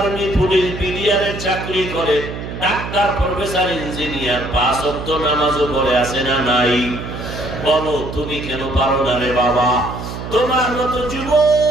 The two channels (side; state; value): right; noise; hum, 8 dB below the sound